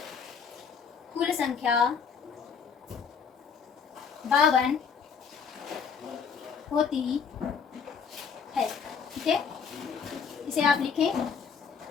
कुल संख्या 52 होती है। ठीक है, इसे आप लिखें।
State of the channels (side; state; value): right; quieter; 6.3 dB